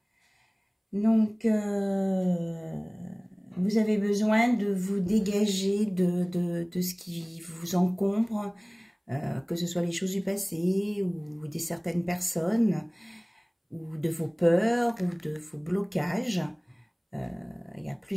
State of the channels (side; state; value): both; identical; correlation 1.00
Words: Donc, vous avez besoin de vous dégager de ce qui vous encombre, que ce soit les choses du passé ou de certaines personnes, ou de vos peurs ou de vos blocages. Il y a